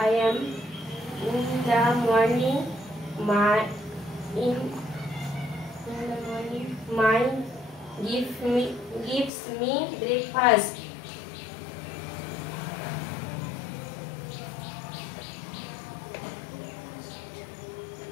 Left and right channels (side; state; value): right; drops out; at 9.3 s